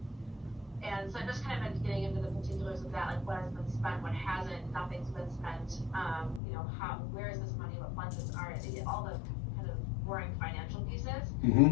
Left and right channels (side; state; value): right; drops out; at 6.4 s